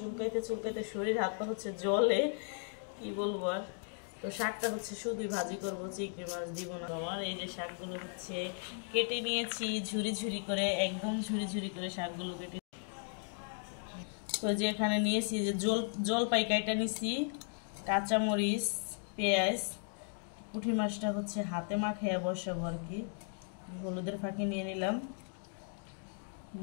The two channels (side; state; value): right; silent; 54 dB below the other